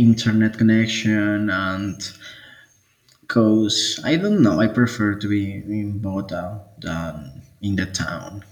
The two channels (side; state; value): both; identical; correlation 1.00